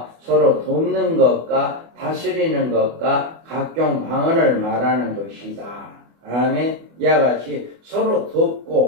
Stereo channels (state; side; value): late; left; 24 ms